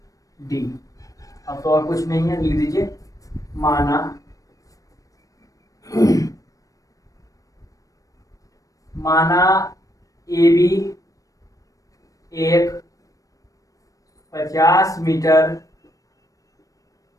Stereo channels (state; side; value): late; right; 0.16 ms